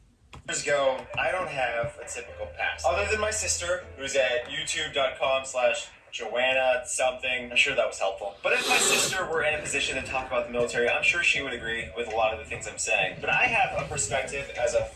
ago, I don't have a typical past. Other than my sister, who's at youtube.com/Joanna something. I'm sure that was helpful. But if my sister were in a position to talk about the military, I'm sure she would agree with a lot of the things I'm saying. But I have a perspective as a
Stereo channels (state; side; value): identical; both; correlation 1.00